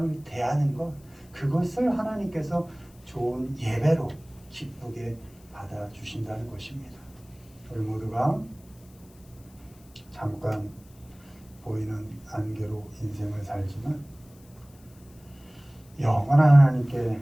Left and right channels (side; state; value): left; noise; hiss, 27 dB below the sound